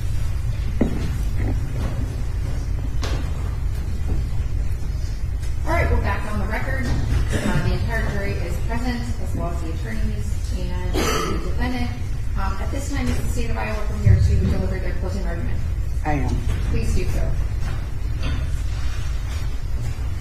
All right, we're back on the record. The entire jury is present, as well as the attorneys and the defendant. At this time, is the state of Iowa prepared to deliver their closing argument? I am. Please do so. Can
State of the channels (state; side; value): identical; both; correlation 1.00